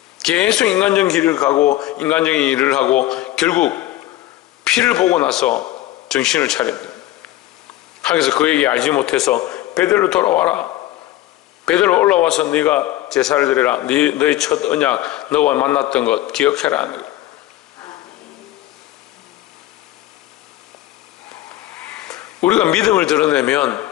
계속 인간적인 길을 가고 인간적인 일을 하고 결국 피를 보고 나서 정신을 차렸다. 하나님께서 그에게 알지 못해서 베델로 돌아와라. 베델로 올라와서 네가 제사를 드려라. 너의 첫 언약, 너와 만났던 것 기억해라. 우리가 믿음을 드러내면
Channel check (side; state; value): right; quieter; 15.2 dB